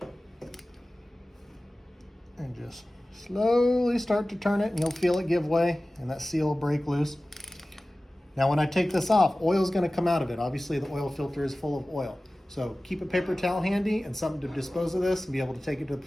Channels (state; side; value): normal; both; correlation 0.97